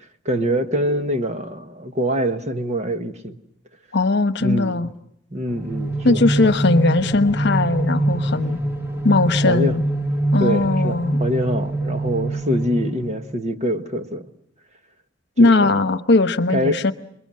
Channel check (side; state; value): both; normal; correlation 0.49